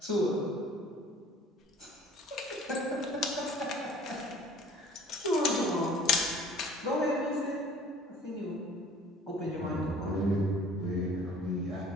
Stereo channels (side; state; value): both; normal; correlation 0.51